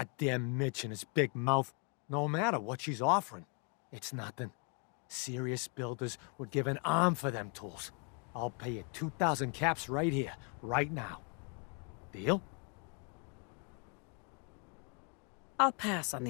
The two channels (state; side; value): quieter; right; 38.2 dB